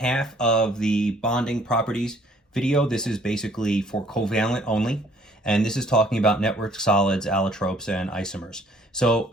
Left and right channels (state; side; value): normal; both; correlation 0.60